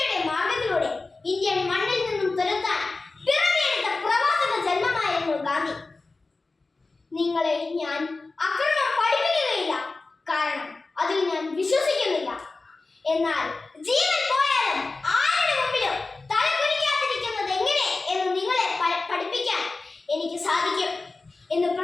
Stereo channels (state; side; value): quieter; right; 3.6 dB